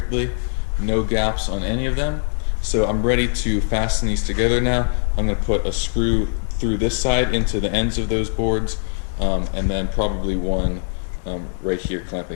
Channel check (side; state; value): right; silent; digital silence